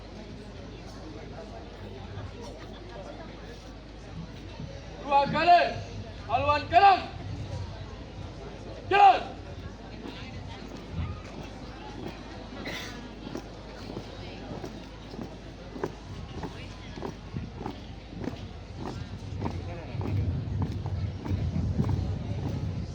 Dua kali haluan kanan. Jalan.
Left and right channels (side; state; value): both; identical; correlation 1.00